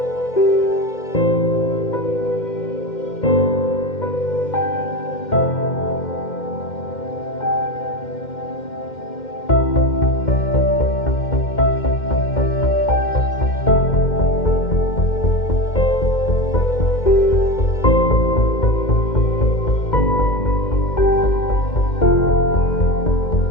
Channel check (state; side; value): late; right; 2.1 ms